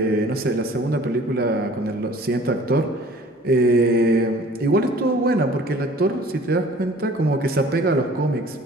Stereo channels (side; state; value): both; normal; correlation 0.50